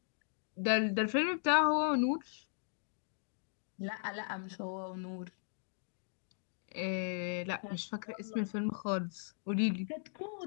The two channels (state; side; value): silent; right; digital silence